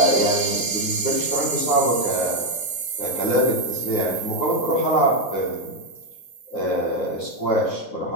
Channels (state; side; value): late; right; 9.6 ms